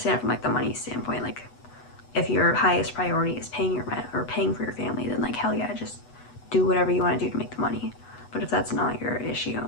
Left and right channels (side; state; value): right; late; 8.1 ms